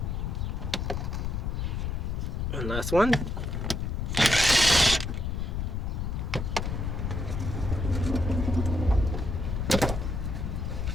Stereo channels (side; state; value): left; noise; rumble, 2 dB below the sound